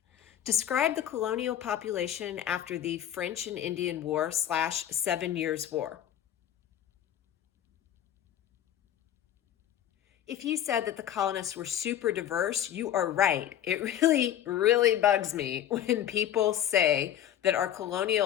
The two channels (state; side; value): quieter; right; 10.9 dB